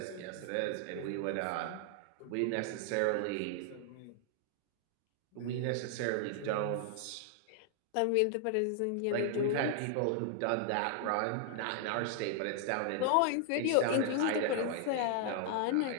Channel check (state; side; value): different; both; correlation 0.00